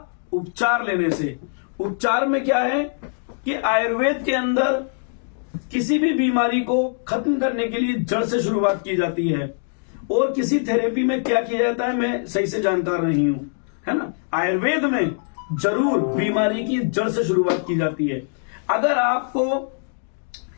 उपचार लेने से। उपचार में क्या है कि आयुर्वेद के अंदर किसी भी बीमारी को खत्म करने के लिए जड़ से शुरुआत की जाती है, और किसी थेरेपी में क्या किया जाता है मैं सही से जानकार नहीं हूं, है ना। आयुर्वेद में जरूर बीमारी की जड़ से शुरुआत की जाती है। अगर आपको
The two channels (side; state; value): right; silent; digital silence